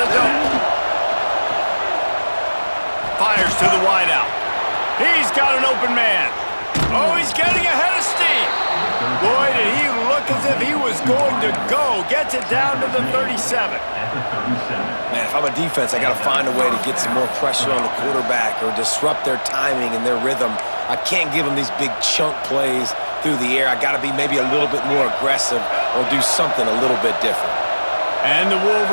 dome. Fires to the wideout. He's got an open man. Oh, he's getting ahead of steam. Boy, did he look as if he was going to go. Gets it down to the 37. Man, if I'm a defense, I got to find a way to get some more pressure on the quarterback or disrupt their timing and their rhythm. I can't give them these big chunk plays through the air. I got to be maybe a little bit more aggressive or do something a little bit different. And the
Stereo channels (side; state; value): both; inverted; correlation -1.00